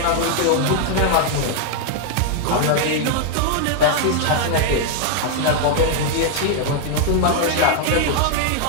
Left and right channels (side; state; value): both; different; correlation 0.00